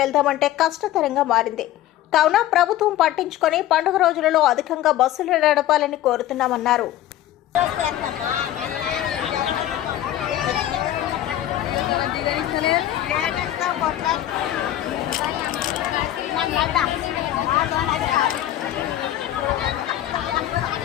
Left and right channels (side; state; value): right; quieter; 13.0 dB